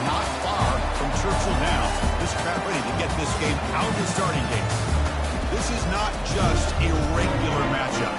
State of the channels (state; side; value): identical; both; correlation 1.00